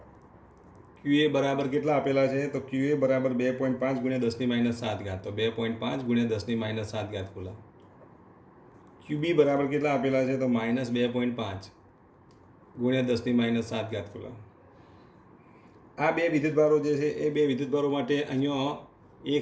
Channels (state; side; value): identical; both; correlation 1.00